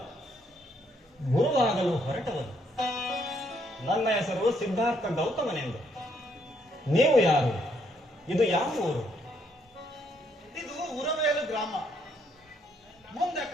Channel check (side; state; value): both; normal; correlation 0.72